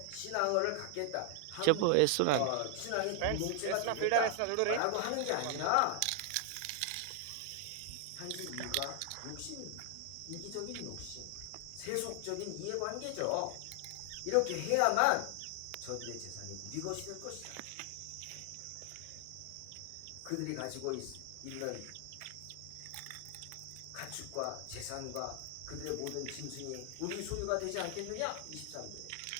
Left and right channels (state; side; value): different; both; correlation 0.00